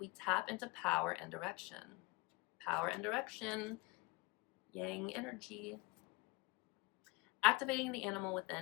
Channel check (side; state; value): right; quieter; 24.5 dB